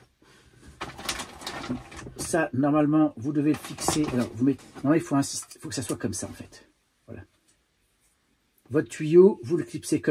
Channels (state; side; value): identical; both; correlation 1.00